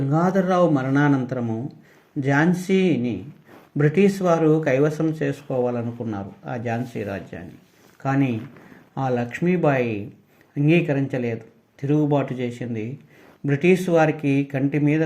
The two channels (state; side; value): identical; both; correlation 1.00